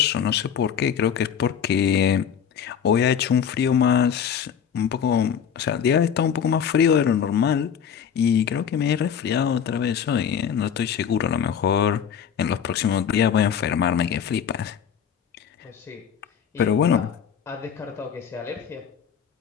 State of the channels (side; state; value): right; quieter; 7.9 dB